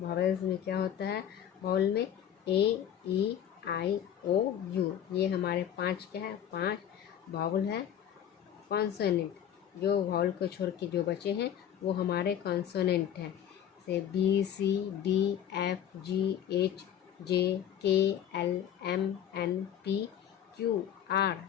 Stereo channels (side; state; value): right; quieter; 9.9 dB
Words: में क्या होता है? वॉवेल में AEIOU, ये हमारे 5 क्या है? 5 वॉवेल है। कॉन्सोनेंट, जो वॉवेल को छोड़ के जो बचे हैं वो हमारे कॉन्सोनेंट हैं, जैसे